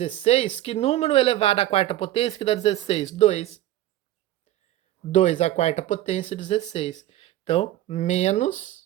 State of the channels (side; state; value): left; quieter; 14.2 dB